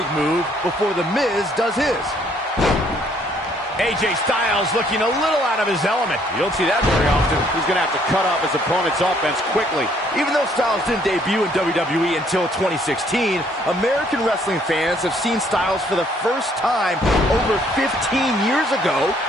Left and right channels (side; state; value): both; normal; correlation 0.65